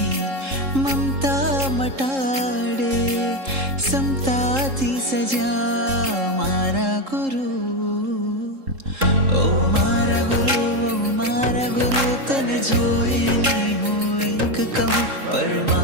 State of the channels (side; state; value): left; late; 3.7 ms